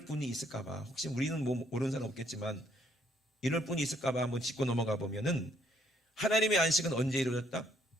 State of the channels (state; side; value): normal; both; correlation 0.68